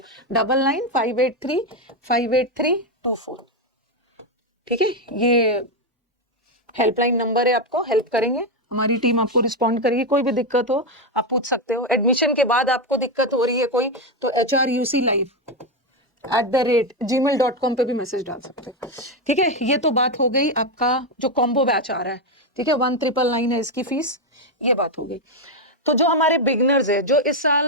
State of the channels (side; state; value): both; normal; correlation 0.07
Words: 9958358324. ठीक है, ये हेल्पलाइन नंबर है, आपको हेल्प करेंगे. हमारी टीम आपको रिस्पॉन्ड करेगी. कोई भी दिक्कत हो आप पूछ सकते हो. एडमिशन के बाद आपको दिक्कत हो रही है कोई, तो hruclive@gmail.com पे भी मैसेज डाल सकते हो. ठीक है, ये तो बात हो गई आपका जो कॉम्बो बैच आ रहा है. ठीक है, 1,999 है इसकी फीस, ये बात हो गई. तो जो हमारे बिगनर्स है, जो इस